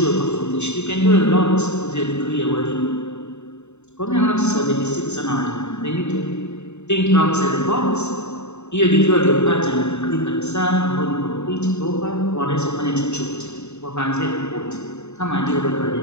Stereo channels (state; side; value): late; right; 0.82 ms